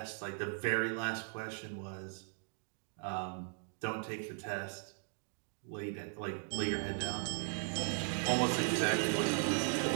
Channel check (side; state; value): left; silent; 52 dB below the other